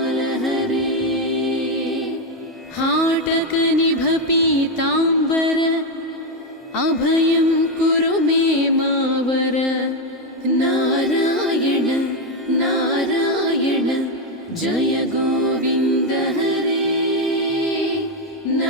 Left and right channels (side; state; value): both; normal; correlation 0.06